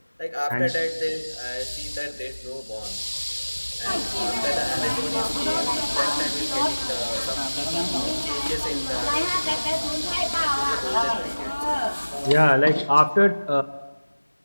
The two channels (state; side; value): inverted; both; correlation -1.00